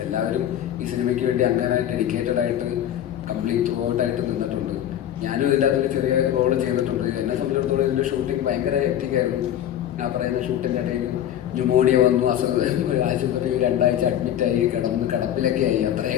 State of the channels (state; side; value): quieter; right; 11.0 dB